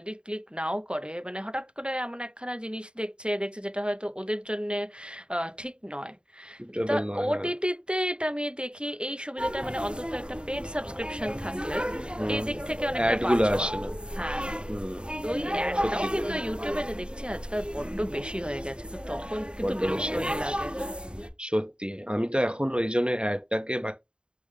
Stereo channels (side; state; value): left; late; 0.051 ms